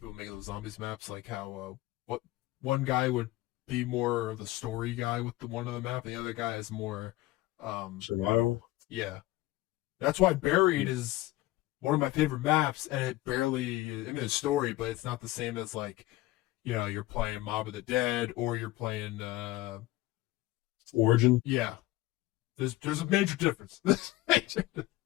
making those zombies maps, like how what one guy would be more of the story guy with the one of the map, and the other guy is more Survival. yeah. That's why Buried is one of my favorite maps, and it barely I mean it's story, but it's not the same as like you're playing Mob of the Dead or you're playing Origin. yeah. There's a major difference.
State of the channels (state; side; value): quieter; right; 17.5 dB